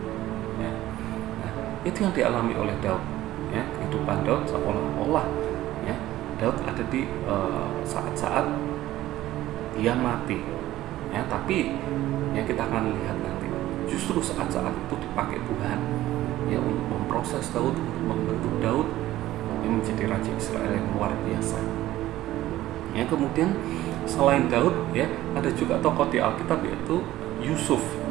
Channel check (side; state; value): left; quieter; 15.1 dB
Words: Ya. Nah, itu yang dialami oleh Daud. Ya, kehidupan Daud seolah-olah ya Daud ada di saat-saat dia mati. Ya, tapi ya kita akan lihat nanti justru saat-saat itu dipakai Tuhan ya untuk memproses Daud, untuk membentuk Daud yang menjadi raja Israel yang luar biasa. Ya, kemudian selain Daud ya ada juga tokoh di Alkitab yaitu Yusuf.